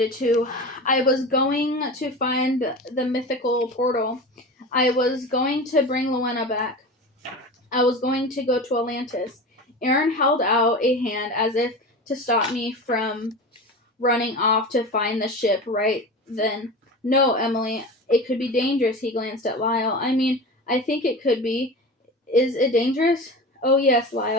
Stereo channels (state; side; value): normal; both; correlation 0.30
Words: too. I was going to find the mythical portal. I was going to bring Luena back. I was going to go to Atlantis. Aaron held out a hand as if to stop me from running off to find the ship right then. No, Emily, it could be dangerous, he glanced at Lyle. I mean, I think it could be. Is it dangerous? Oh, yes,